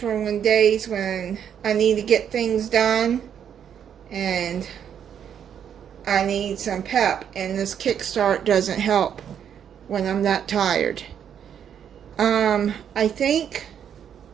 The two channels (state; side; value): quieter; left; 8.7 dB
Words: when days when I need to get things done and I need some pep, and this Kickstart doesn't help when I'm that tired. I think,